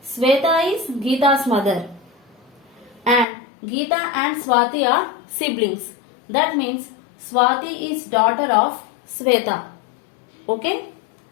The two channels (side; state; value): right; drops out; at 3.2 s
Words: Sweta is Geeta's mother. And Geeta and Swati are siblings. That means Swati is daughter of Sweta. Okay.